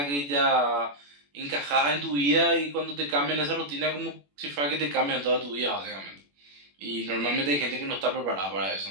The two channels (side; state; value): left; late; 21 ms